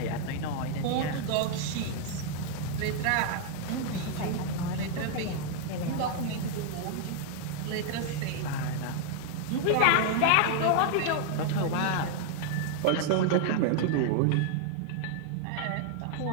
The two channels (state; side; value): different; both; correlation 0.00